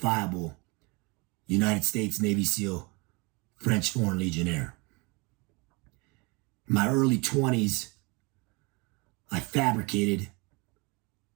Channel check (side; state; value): left; quieter; 27.9 dB